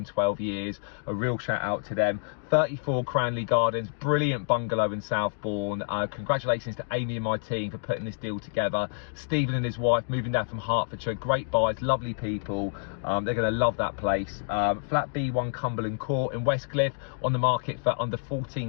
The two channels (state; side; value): silent; right; digital silence